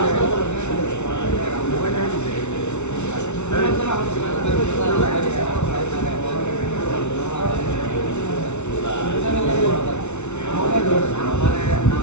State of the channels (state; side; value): late; right; 0.82 ms